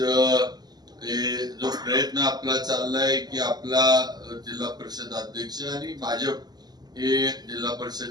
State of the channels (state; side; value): late; left; 0.19 ms